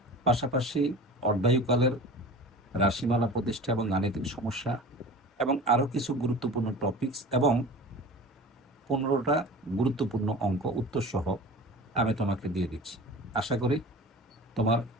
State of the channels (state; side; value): normal; both; correlation 0.38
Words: পাশাপাশি অর্ধায়ুকালের রাশিমালা প্রতিষ্ঠা এবং গাণিতিক সমস্যা, এবং আরও কিছু গুরুত্বপূর্ণ টপিকস এবং 15টা গুরুত্বপূর্ণ অঙ্ক উত্তরসহ আমি তোমাকে দিয়ে দিচ্ছি। আশা করি তোমার